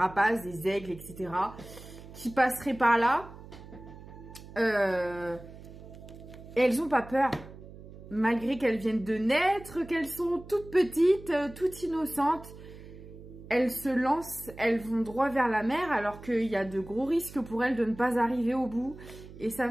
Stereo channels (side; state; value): right; noise; hum, 16 dB below the sound